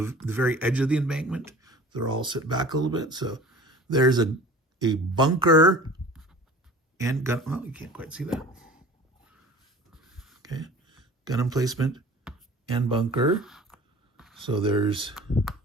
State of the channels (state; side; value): normal; both; correlation 0.42